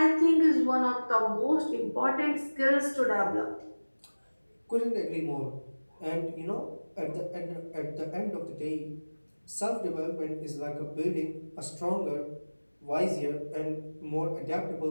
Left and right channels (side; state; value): both; inverted; correlation -1.00